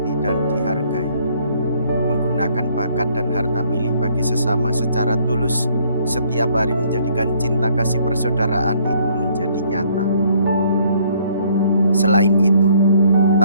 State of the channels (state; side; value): inverted; both; correlation -0.64